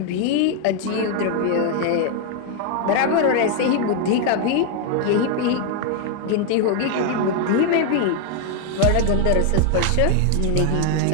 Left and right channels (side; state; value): both; different; correlation 0.01